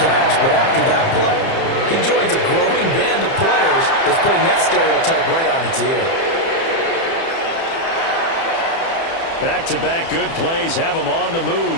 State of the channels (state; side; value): late; right; 30 ms